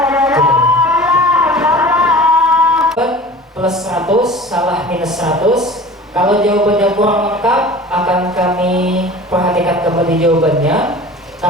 Plus 100, salah minus 100. Kalau jawabannya kurang lengkap, akan kami perhatikan kembali jawabannya.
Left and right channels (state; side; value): normal; both; correlation 0.40